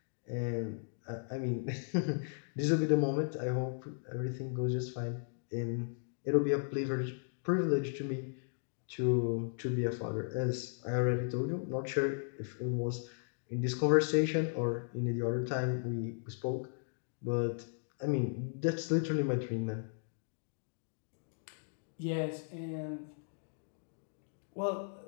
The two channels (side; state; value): right; silent; digital silence